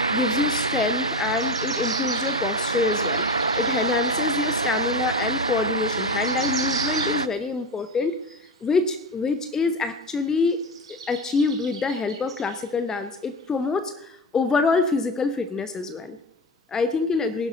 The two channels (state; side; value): normal; both; correlation 0.22